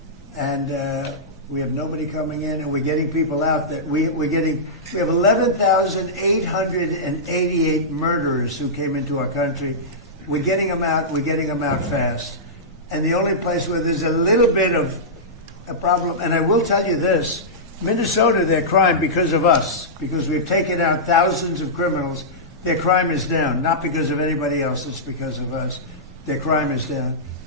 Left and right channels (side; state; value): both; normal; correlation -0.14